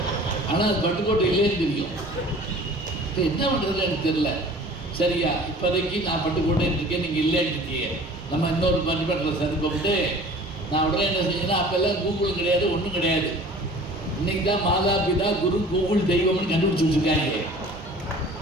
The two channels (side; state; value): both; normal; correlation 0.46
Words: ஆனால் அது பட்டுக்கோட்டை இல்லைன்னு தெரியும். இப்போ என்ன பண்ணுறது எனக்கு தெரியல. சரியா, இப்போதைக்கு நான் பட்டுக்கோட்டைன்னு இருக்கேன், நீங்கள் இல்லைன்னு இருக்கீங்க. நம்ம இன்னொரு பட்டிமன்றத்தில் சந்திப்போம்ட்டு நான் உடனே என்ன செஞ்சேன்னா, அப்போல்லாம் கூகுளும் கிடையாது, ஒன்றும் கிடையாது. இன்னைக்கு தான் மாதா பிதா குரு கூகுள் தெய்வம்னு கண்டுபிடிச்சி வச்சுருக்காங்க.